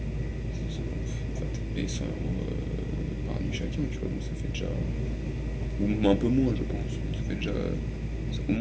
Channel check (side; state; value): both; identical; correlation 1.00